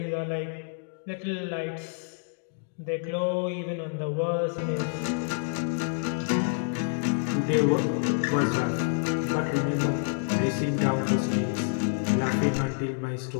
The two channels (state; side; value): silent; right; digital silence